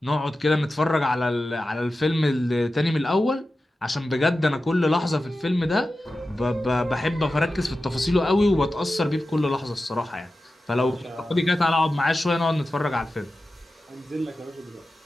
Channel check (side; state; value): both; normal; correlation 0.93